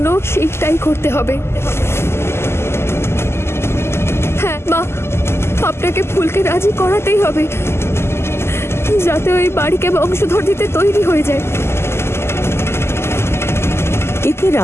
সেইটাই করতে হবে। হ্যাঁ মা, আপনাকে ফুলকে রাজি করাতেই হবে, যাতে ওই বাড়িকে বংশধর দিতে তৈরি হয়ে যায়। এতে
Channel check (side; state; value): right; late; 0.12 ms